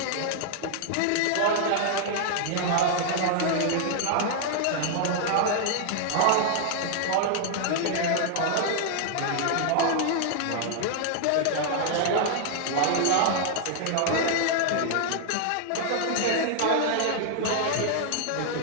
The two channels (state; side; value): different; both; correlation -0.01